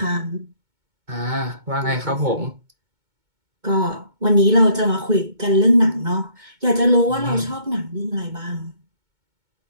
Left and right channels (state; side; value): late; left; 2.2 ms